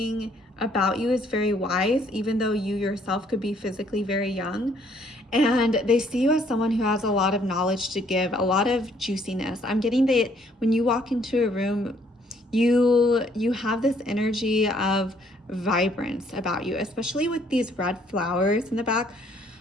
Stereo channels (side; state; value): both; normal; correlation 0.65